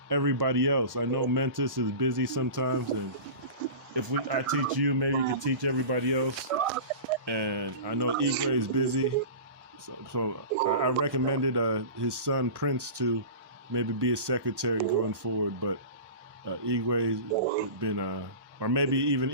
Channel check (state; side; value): late; left; 1.1 ms